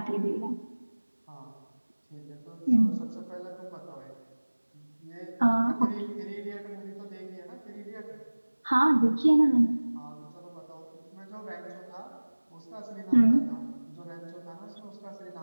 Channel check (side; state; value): both; inverted; correlation -1.00